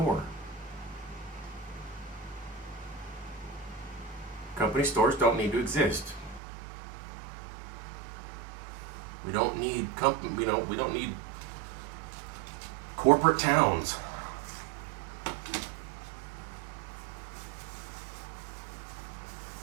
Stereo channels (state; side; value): drops out; left; at 6.4 s